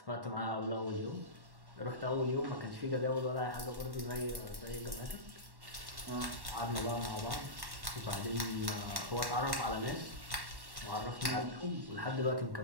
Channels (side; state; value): left; late; 1.1 ms